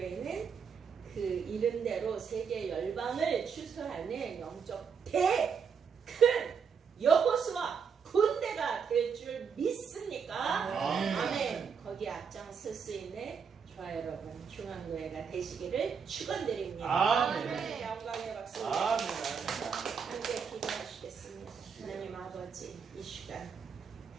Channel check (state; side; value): quieter; left; 6.3 dB